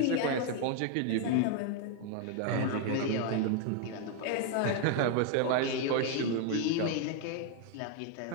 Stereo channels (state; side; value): different; both; correlation 0.00